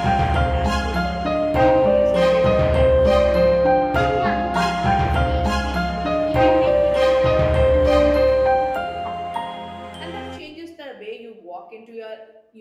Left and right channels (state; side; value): identical; both; correlation 1.00